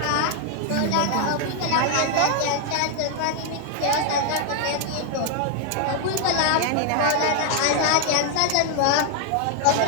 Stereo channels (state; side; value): different; both; correlation 0.00